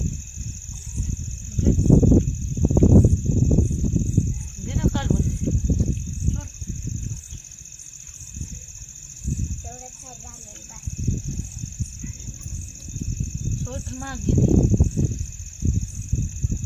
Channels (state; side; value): identical; both; correlation 1.00